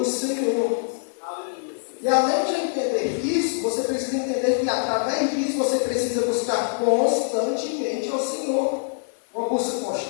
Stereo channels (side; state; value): right; silent; digital silence